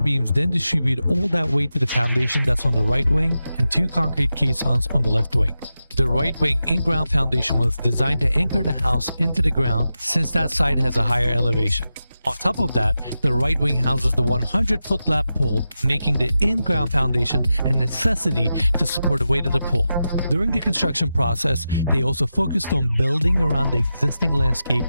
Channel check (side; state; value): both; inverted; correlation -0.91